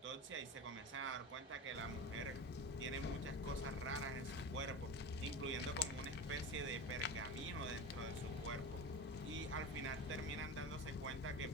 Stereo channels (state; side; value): normal; both; correlation 0.27